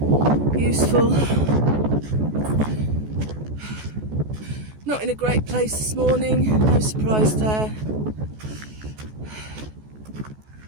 useful. Not in a great place this morning, no surprise there.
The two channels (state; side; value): late; left; 14 ms